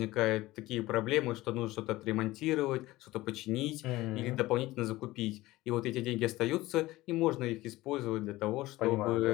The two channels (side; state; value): right; quieter; 18.2 dB